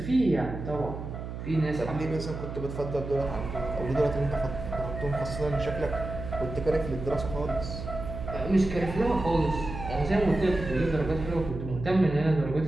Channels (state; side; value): noise; right; hum, 8 dB below the sound